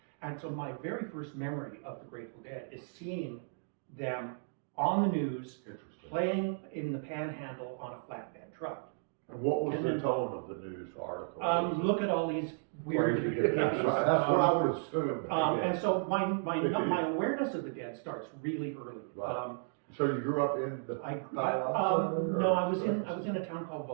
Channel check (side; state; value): left; silent; digital silence